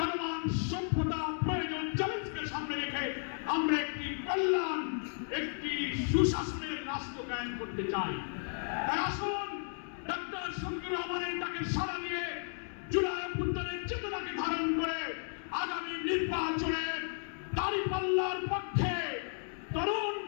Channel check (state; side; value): silent; right; 55 dB below the other